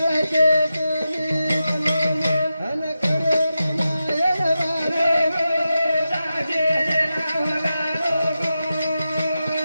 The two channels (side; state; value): both; inverted; correlation -0.91